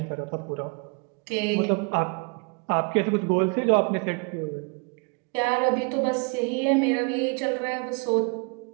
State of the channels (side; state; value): left; quieter; 34.1 dB